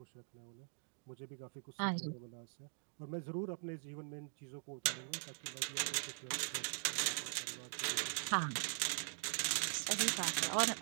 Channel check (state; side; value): silent; left; digital silence